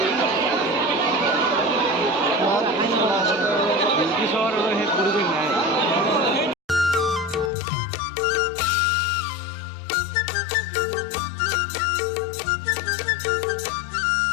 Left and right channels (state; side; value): drops out; right; at 7.5 s